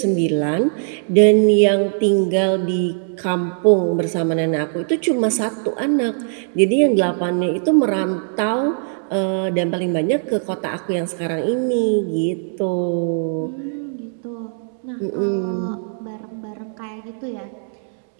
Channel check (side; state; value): left; silent; 64 dB below the other